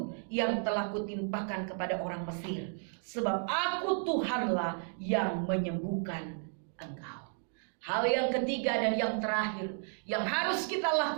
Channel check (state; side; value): silent; left; 56 dB below the other